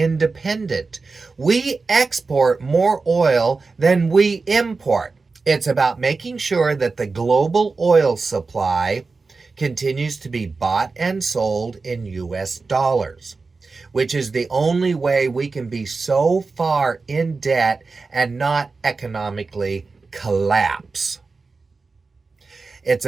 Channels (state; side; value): quieter; left; 4.1 dB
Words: We export more oil than we import. It's about making sure that the global oil supply continues to be bought and sold in US dollars, which is the only way we can be so far in debt and not economically collapse. It's